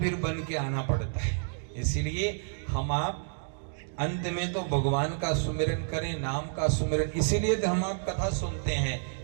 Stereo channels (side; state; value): left; silent; digital silence